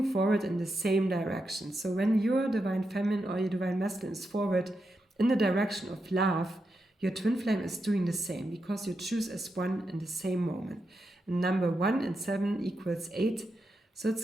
forward in the same direction. So when your divine feminine or your divine masculine is forward in the direction of love, your twin flame is doing the same, because you choose as one in the same moment. And number 1 and 7 equals 8. So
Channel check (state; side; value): normal; both; correlation 0.86